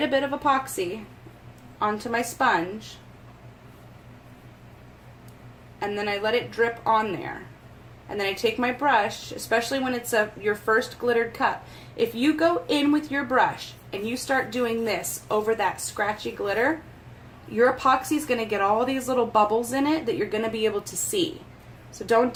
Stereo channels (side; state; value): both; identical; correlation 1.00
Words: a bit of epoxy onto my sponge, and then I let it drip on there. And then I take my brush, especially when it's your first glittered cup. If you go in with your brush and you start doing this over that scratchy glitter, your epoxy is going to get all these little bubbles in it that you're going to be able to see. So don't